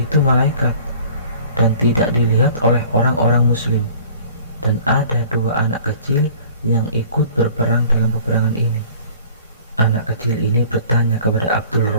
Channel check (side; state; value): both; inverted; correlation -0.49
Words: malaikat, dan tidak dilihat oleh orang-orang muslim. Dan ada 2 anak kecil yang ikut berperang dalam peperangan ini. Anak kecil ini bertanya kepada Abdul